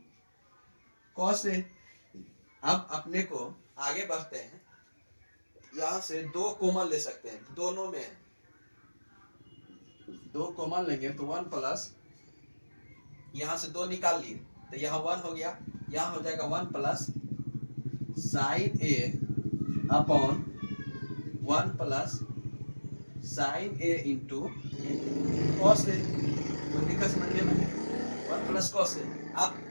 cos A. अब अपने को आगे बढ़ते हैं, यहाँ से 2 कॉमन ले सकते हैं, दोनों में 2 कॉमन लेंगे तो 1 प्लस, यहाँ से 2 निकाल लिए तो यहाँ 1 हो गया, यहाँ हो जाएगा 1 plus sign A upon 1 plus sign A into cos A. तो दिक्कत समझिए ना, 1 प्लस कॉस ए। आप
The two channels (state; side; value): inverted; both; correlation -1.00